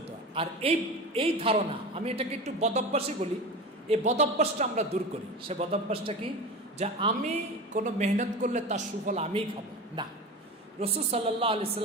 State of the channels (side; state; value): both; normal; correlation 0.29